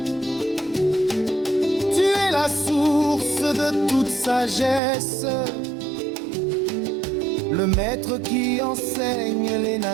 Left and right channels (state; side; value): drops out; left; at 4.8 s